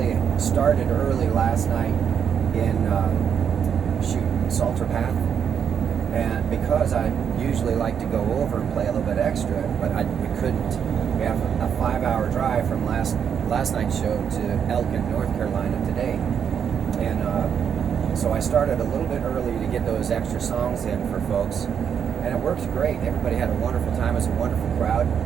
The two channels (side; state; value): left; quieter; 7.7 dB